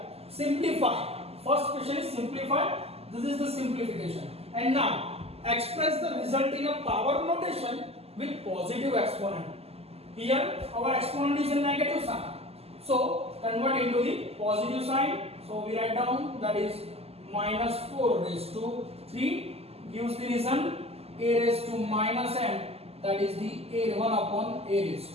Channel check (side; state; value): left; late; 0.29 ms